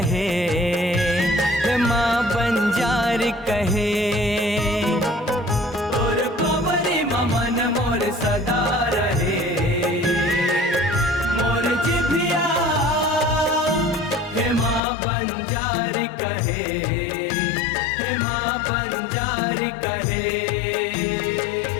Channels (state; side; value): drops out; right; at 14.8 s